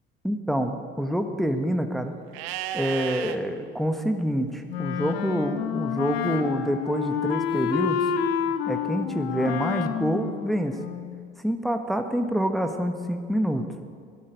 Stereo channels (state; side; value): normal; both; correlation 0.68